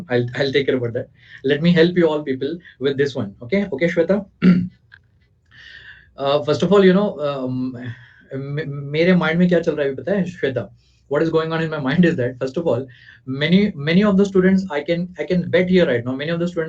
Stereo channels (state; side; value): identical; both; correlation 1.00